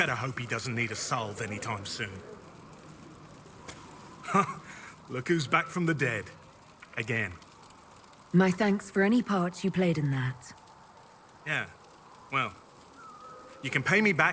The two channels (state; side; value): identical; both; correlation 1.00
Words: hope he doesn't need a salve anytime soon. Look who's back from the dead. Again. My thanks for any part you played in that. Yeah. Well, you can pay me